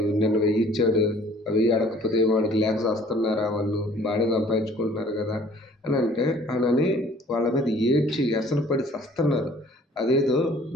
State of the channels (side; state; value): both; normal; correlation 0.54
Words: నిన్న 1000 ఇచ్చాడు, ఆ 1000 అడగకపోతే వాడికి లేక చస్తున్నారా, వాళ్ళు బాగానే సంపాదించుకుంటున్నారు కదా అని వాళ్ళ మీద ఏడ్చి వ్యసనపడి చస్తున్నారు. అదేదో